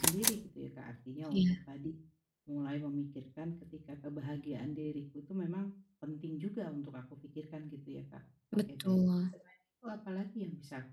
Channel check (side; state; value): both; identical; correlation 1.00